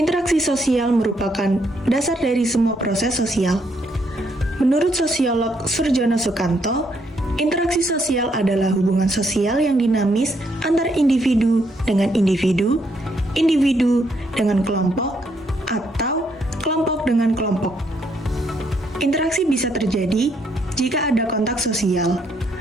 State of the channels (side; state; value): both; normal; correlation 0.73